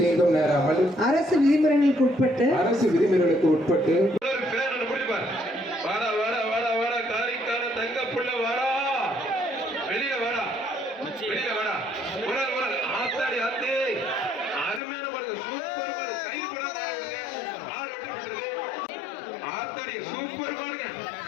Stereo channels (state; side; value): drops out; right; at 14.8 s